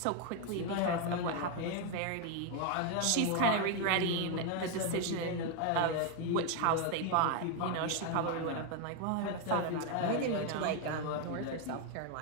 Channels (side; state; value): both; different; correlation 0.01